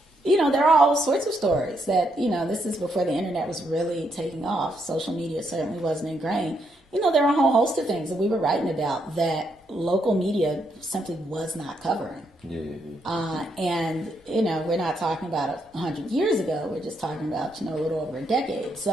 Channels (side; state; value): both; normal; correlation 0.77